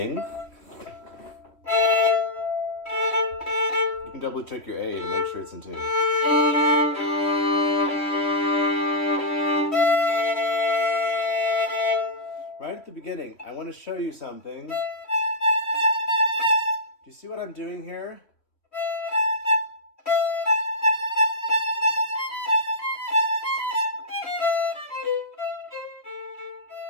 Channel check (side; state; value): right; late; 3.1 ms